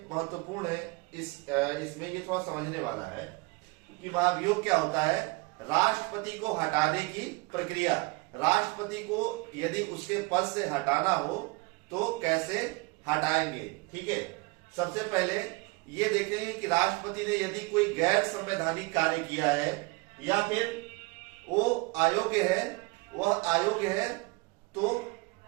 महत्वपूर्ण है, इसमें ये थोड़ा समझने वाला है कि महाभियोग क्या होता है। राष्ट्रपति को हटाने की प्रक्रिया, राष्ट्रपति को यदि उसके पद से हटाना हो तो कैसे हटाएंगे। ठीक है, सबसे पहले ये देखेंगे कि राष्ट्रपति ने यदि कोई गैर संवैधानिक कार्य किया है या फिर वो अयोग्य है, वह अयोग्य है तो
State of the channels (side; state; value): left; quieter; 26.3 dB